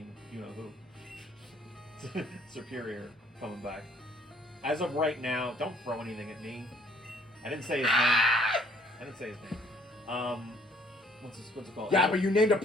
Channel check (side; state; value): both; normal; correlation 0.61